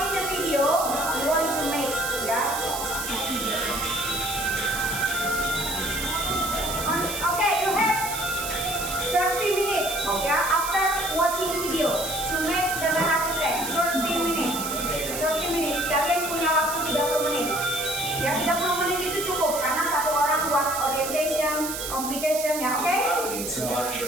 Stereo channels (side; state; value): right; noise; hiss, 6 dB below the sound